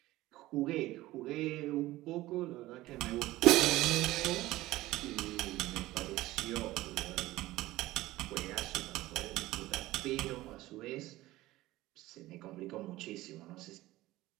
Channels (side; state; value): left; quieter; 17.3 dB